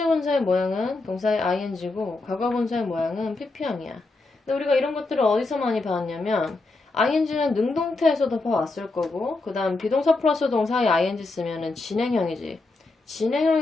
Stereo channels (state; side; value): quieter; right; 3.4 dB